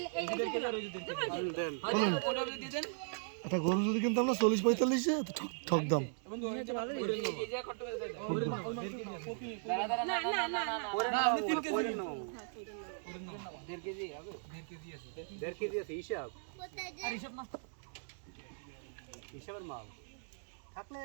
এই 1.5 কেজি আর ওই 1.5 কেজি দেন ওটা দিয়ে দেন এটা গরু যদি কিনতাম না 40-45 এ তো ঠক দাম এবং এই জায়গা কত করে দেয় না আপনি 3 কেজি নাও 1.5 কেজি হবে 1.5 কেজি আছে 1.5 কেজি আছে হিসাব আর হিসাব না হিসাবের মাল থাকলে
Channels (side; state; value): left; silent; digital silence